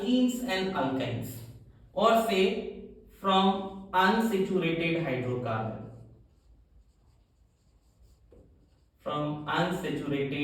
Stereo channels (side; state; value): both; identical; correlation 1.00